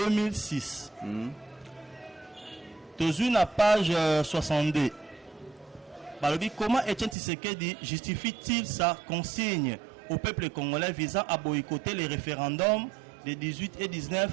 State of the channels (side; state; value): left; drops out; at 7.2 s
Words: Toujours la page 62. Balobi, comment Etienne Tshisekedi justifie-t-il sa consigne au peuple congolais visant à boycotter les référendums des 18 et 19